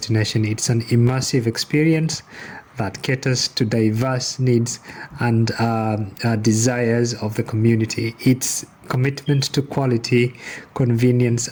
It's an immersive experience that caters to diverse needs and desires of the community. Its commitment to quality, convenience,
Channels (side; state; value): both; identical; correlation 1.00